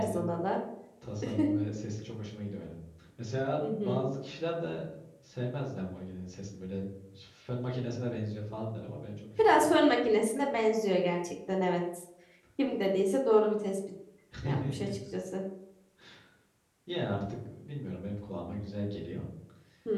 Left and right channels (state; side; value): identical; both; correlation 1.00